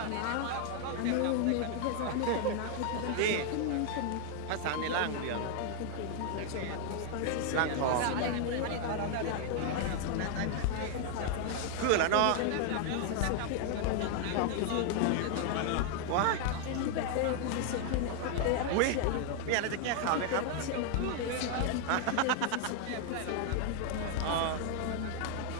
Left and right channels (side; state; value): both; different; correlation 0.00